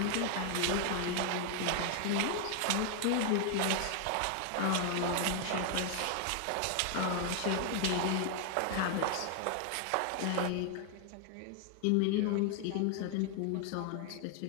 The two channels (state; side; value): different; both; correlation 0.00